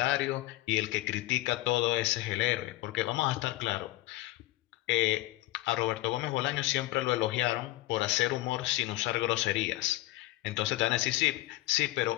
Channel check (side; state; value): right; quieter; 17.4 dB